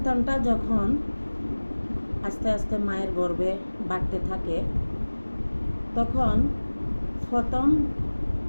যখন আস্তে আস্তে মায়ের গর্ভে বাড়তে থাকে, তখন প্রথম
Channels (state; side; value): inverted; both; correlation -1.00